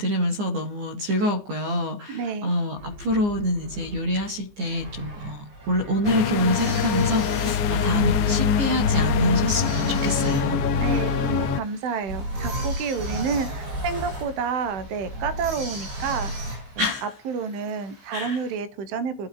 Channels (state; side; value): late; left; 15 ms